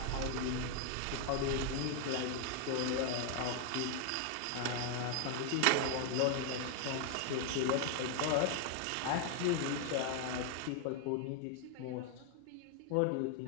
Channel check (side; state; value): both; different; correlation 0.00